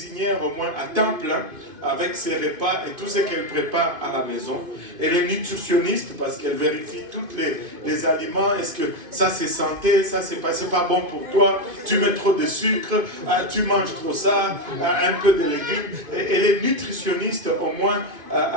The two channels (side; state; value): left; late; 2.4 ms